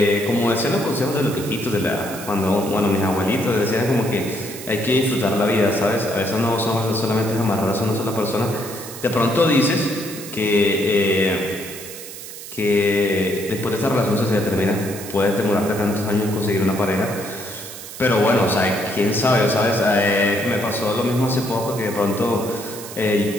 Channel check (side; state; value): right; noise; hiss, 12 dB below the sound